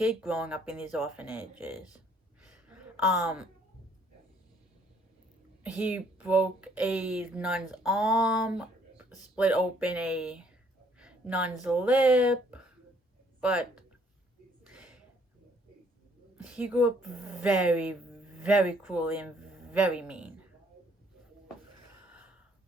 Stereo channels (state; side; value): normal; both; correlation 0.64